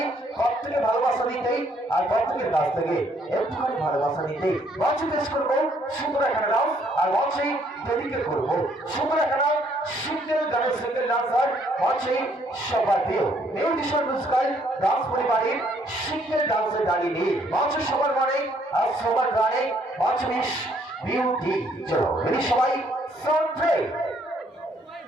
প্রত্যেকে ভালোবাসা দিতে আর প্রত্যেকের কাছ থেকে একটুখানি ভালোবাসা দিতে মঞ্চে পেশ করবো সুন্দর একটা ডান্স আর মঞ্চে ডেডিকেট করবো সুন্দর একটা সিঙ্গেল গানের সিঙ্গেল ডান্সার মঞ্চে সবাইও মিউজিশিয়ান মিউজিক্যাল ডান্স পরিবারের সিঙ্গেল ডান্সের দাঁড়িয়ে মঞ্চে সবার মানে আর সবার গানে মঞ্চ মিস বিউটি চলো রেডি সবাই সাউন্ড প্লে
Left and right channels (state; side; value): normal; both; correlation 0.67